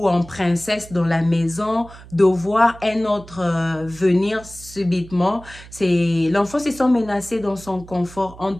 en princesse dans la maison de voir un autre venir subitement. L'enfant se sent menacé dans son confort. En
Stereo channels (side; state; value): right; noise; hum, 19 dB below the sound